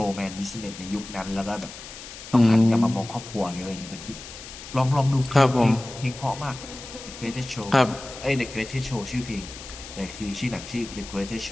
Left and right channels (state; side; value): noise; left; hiss, 13 dB below the sound